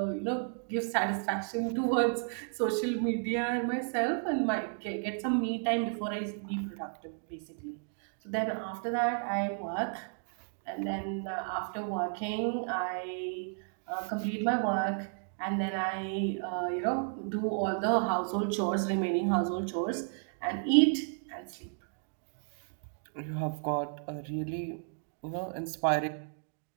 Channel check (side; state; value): left; silent; 56 dB below the other